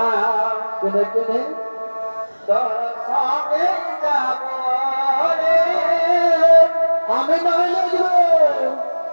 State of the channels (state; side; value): inverted; both; correlation -1.00